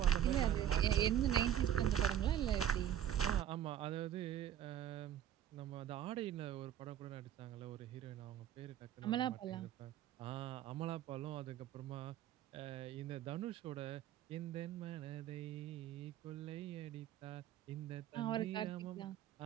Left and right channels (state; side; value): quieter; left; 10.7 dB